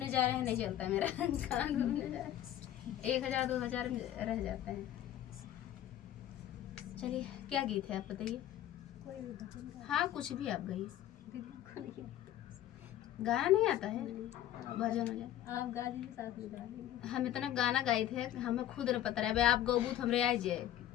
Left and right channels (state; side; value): quieter; right; 12.1 dB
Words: जा रहे हैं नहीं चलता है मेरा कहाँ घूमने जा रहे हैं 1000 2000 रह जाता है। चलिए क्या गीत है आप बताइए। हाँ कुछ भी आप गाइए। गाना नहीं आता है, भजन हो जाए आप गा दीजिए, साथ में गा देंगे। हम इतना गाना गाए थे हमें खुद नहीं पता रहा। आप गौबूत हमरे आ जाए